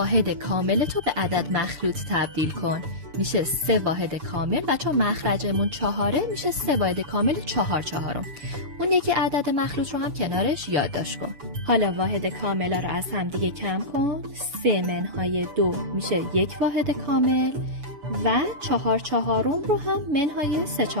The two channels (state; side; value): late; left; 7.0 ms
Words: کامل تو به عدد مخلوط تبدیل کن. میشه 3 واحد کامل و چون مخرجمون 4 میشه 3 واحد کامل 4/4. اون یکی عدد مخلوط رو هم کنارش یادداشت کن. حالا واحد کاملا رو از هم دیگه کم کن. 3-2 میشه 1 واحد کامل و 4/4 رو هم منهای